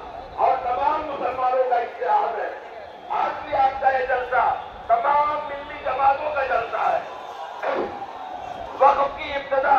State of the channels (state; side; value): identical; both; correlation 1.00